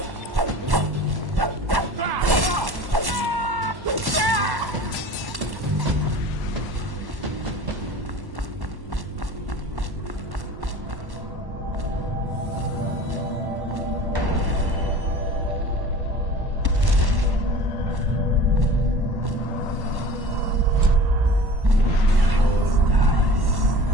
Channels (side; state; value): left; late; 1.1 ms